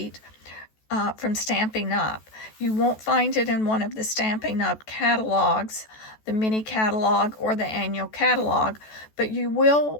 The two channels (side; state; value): right; late; 14 ms